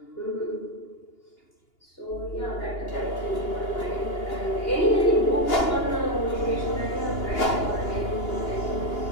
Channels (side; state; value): right; late; 2.8 ms